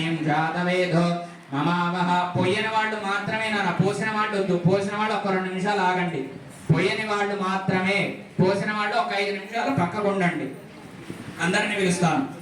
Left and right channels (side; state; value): both; identical; correlation 1.00